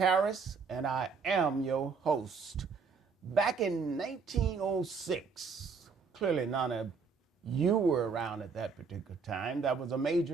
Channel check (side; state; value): left; quieter; 5.2 dB